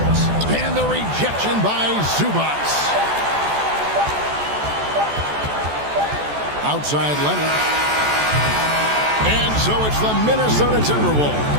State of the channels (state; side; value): late; left; 14 ms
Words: And the rejection by Zubats. Outside Leonard. And so it's the Minnesota